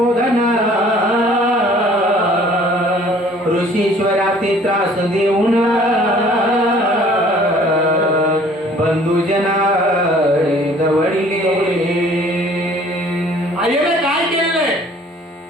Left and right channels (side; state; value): both; normal; correlation 0.54